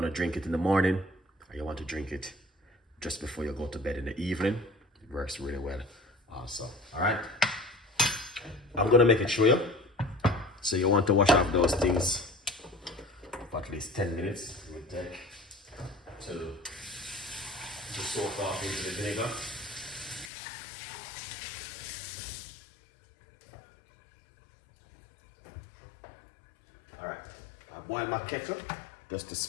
to drink it in the morning, or you want to drink it just before you go to bed in the evening. It works really well also. All right, I'm gonna make it show you. So you want to wash off those things for at least 10 minutes. It will take to soak off into the vinegar. All right, I boil my kettle just to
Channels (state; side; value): drops out; right; at 20.3 s